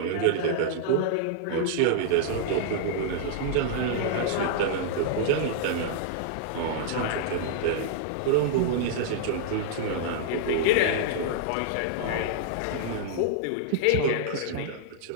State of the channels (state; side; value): different; both; correlation -0.01